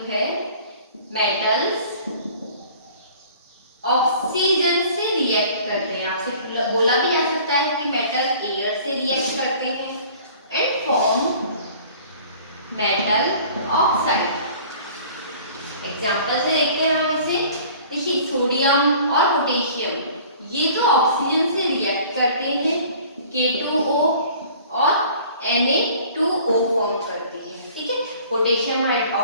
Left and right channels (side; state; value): both; inverted; correlation -0.48